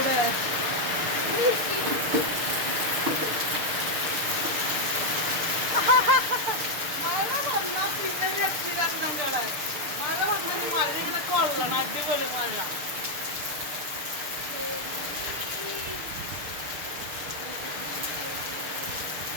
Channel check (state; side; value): late; left; 6.7 ms